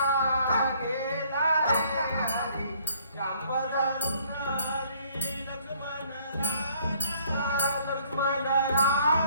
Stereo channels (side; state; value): both; inverted; correlation -0.61